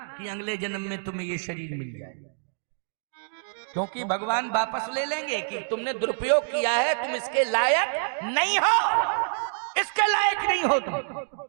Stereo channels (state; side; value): silent; left; digital silence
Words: कि अगले जन्म में तुम्हें ये शरीर मिल जाए, क्योंकि भगवान वापस ले लेंगे कि तुमने दुरुपयोग किया है, तुम इसके लायक नहीं हो, इसके लायक नहीं हो तुम।